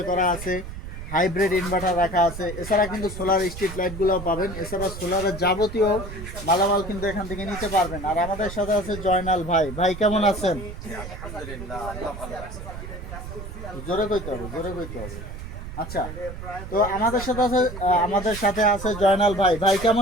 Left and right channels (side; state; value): right; noise; rumble, 10 dB below the sound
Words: করা আছে, হাইব্রিড ইনভার্টার রাখা আছে। এছাড়া কিন্তু সোলার স্ট্রিট লাইটগুলোও পাবেন। এছাড়া সোলারের যাবতীয় মালামাল কিন্তু এখান থেকে নিতে পারবেন। আর আমাদের সাথে আছে জয়নাল ভাই। ভাই কেমন আছেন? জোরে কইতে হবে, জোরে কইতে হবে। আচ্ছা, তো আমাদের সাথে আছে জয়নাল ভাই। ভাই